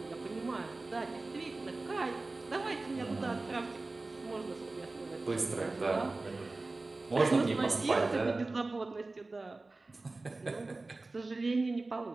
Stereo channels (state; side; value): quieter; left; 3.3 dB